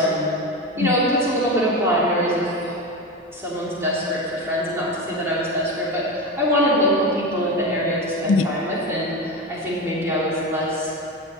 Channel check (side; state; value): both; normal; correlation 0.21